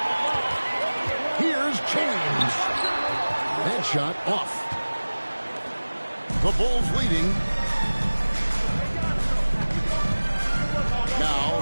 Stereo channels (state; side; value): inverted; both; correlation -1.00